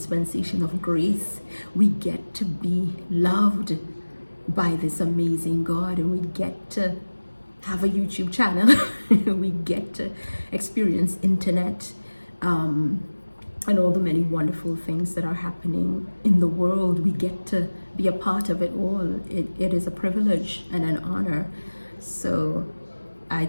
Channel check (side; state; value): both; inverted; correlation -1.00